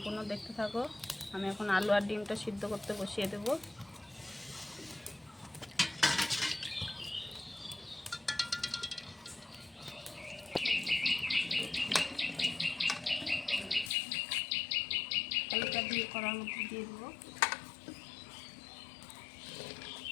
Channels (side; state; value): right; drops out; at 13.9 s